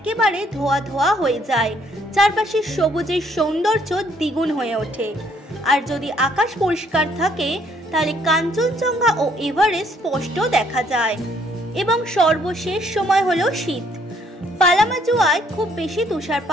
ধোয়া ধোয়া হয়ে যায়, চারপাশে সবুজের সৌন্দর্য দ্বিগুণ হয়ে ওঠে। আর যদি আকাশ পরিষ্কার থাকে তাহলে কাঞ্চনজঙ্ঘা ও এভারেস্ট স্পষ্ট দেখা যায়। এবং সর্বশেষ সময় হলো শীত। পালামাজুয়ায় খুব বেশি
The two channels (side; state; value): both; normal; correlation 0.66